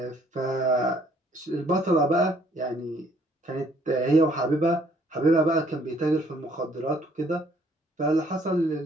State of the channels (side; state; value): both; normal; correlation 0.63